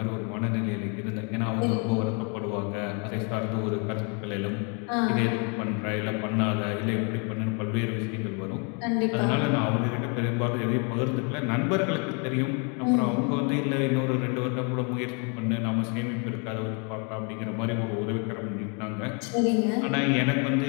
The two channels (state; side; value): quieter; right; 35.8 dB